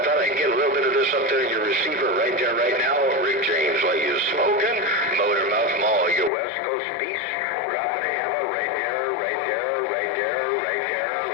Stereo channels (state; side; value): drops out; right; at 6.3 s